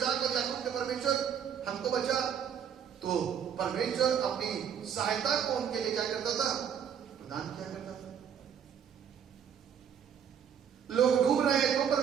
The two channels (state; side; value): quieter; left; 8.2 dB